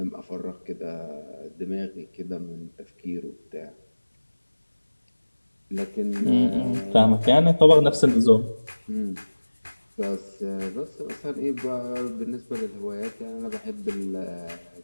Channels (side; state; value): both; inverted; correlation -1.00